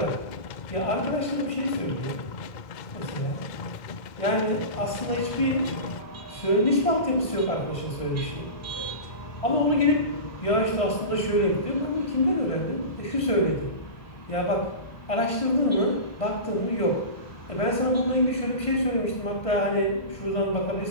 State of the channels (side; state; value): right; late; 1.6 ms